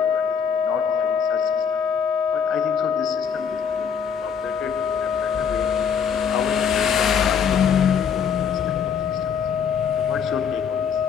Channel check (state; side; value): quieter; right; 7.1 dB